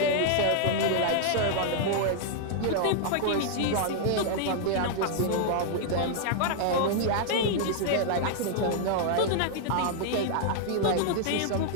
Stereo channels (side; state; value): both; different; correlation -0.01